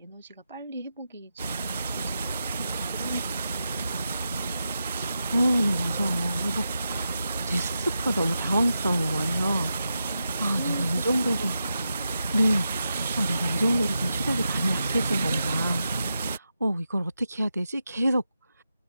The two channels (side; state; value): both; inverted; correlation -0.88